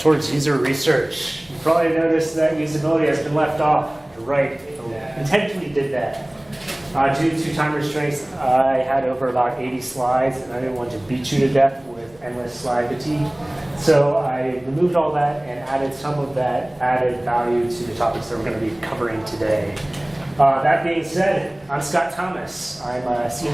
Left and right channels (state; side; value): noise; right; hum, 30 dB below the sound